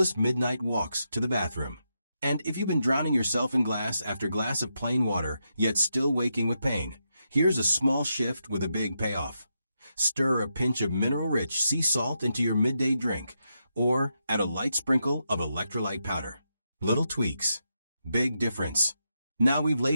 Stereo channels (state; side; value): inverted; both; correlation -0.84